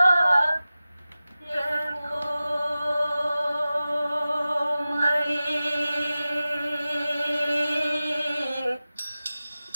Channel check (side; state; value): both; inverted; correlation -0.95